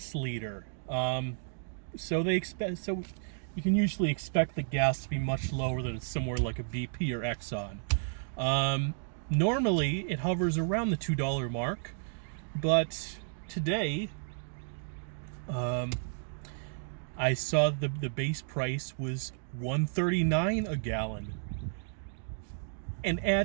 leader. So you can usually expect the gas to be much lower than somewhere like a BP or Exxon. Normally it hovers around the $2 mark, but today I saw the base price was $1.39 a gallon. And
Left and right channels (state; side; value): silent; left; digital silence